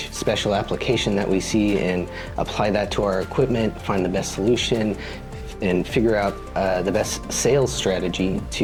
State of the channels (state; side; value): identical; both; correlation 1.00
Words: special application that we see and apply that to our equipment, find the best solution, figure out the best sales strategy